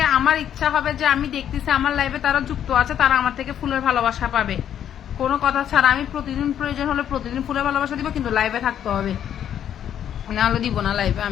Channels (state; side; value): quieter; right; 9.8 dB